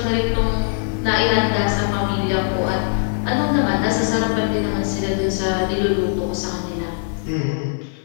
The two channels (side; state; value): right; silent; digital silence